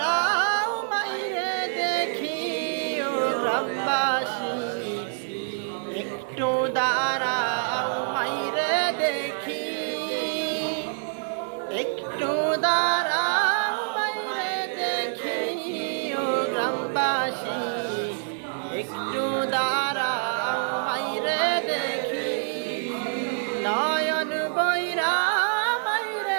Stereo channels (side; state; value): left; silent; digital silence